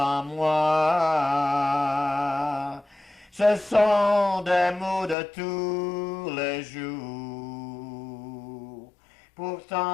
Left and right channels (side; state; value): right; drops out; at 5.2 s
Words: moi. Ce sont des mots de tous les jours.